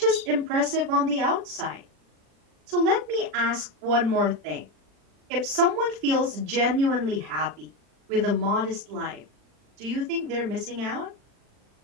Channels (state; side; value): late; left; 40 ms